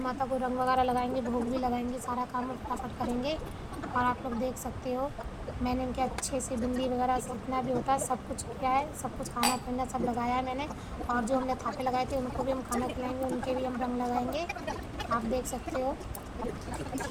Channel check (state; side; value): identical; both; correlation 1.00